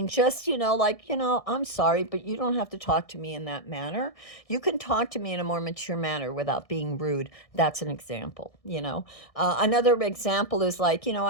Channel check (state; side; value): late; right; 1.6 ms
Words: just, like, I'm sorry, but you don't have to talk to me in that manner. You can talk to me in a more mature manner without being rude. That's an example. Another example is like,